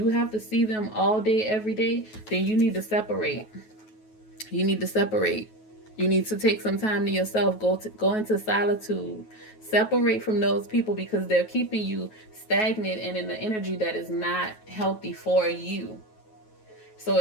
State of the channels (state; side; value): late; right; 9.3 ms